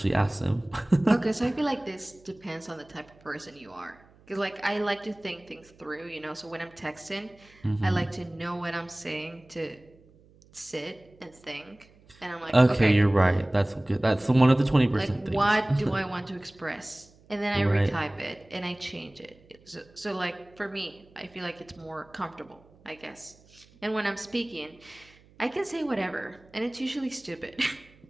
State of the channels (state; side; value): noise; right; hum, 28 dB below the sound